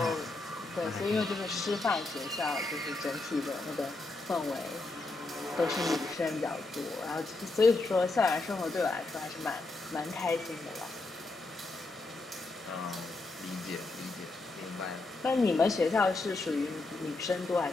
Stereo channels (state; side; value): quieter; right; 3.2 dB